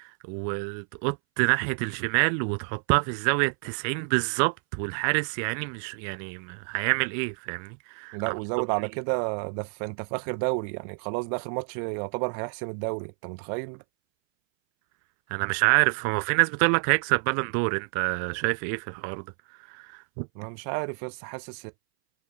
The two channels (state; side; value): silent; left; 59 dB below the other